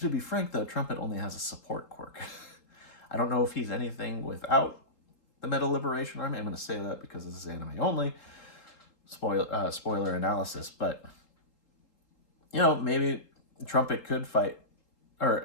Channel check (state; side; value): late; right; 3.8 ms